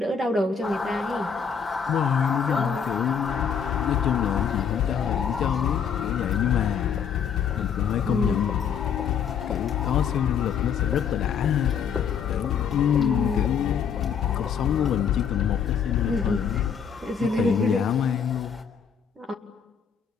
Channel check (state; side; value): quieter; right; 7.1 dB